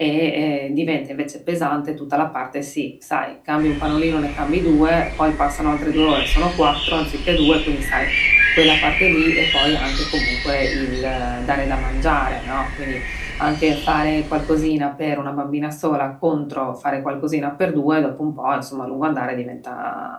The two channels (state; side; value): identical; both; correlation 1.00